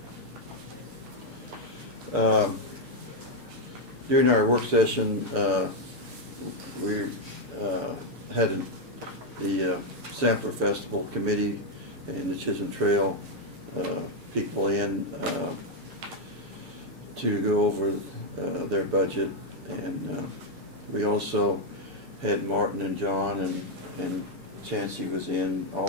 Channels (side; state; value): left; late; 6.5 ms